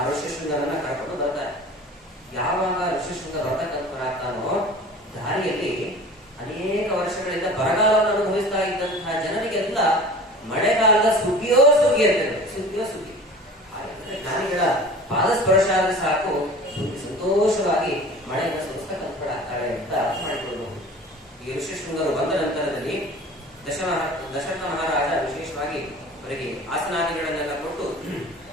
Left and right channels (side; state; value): both; normal; correlation 0.41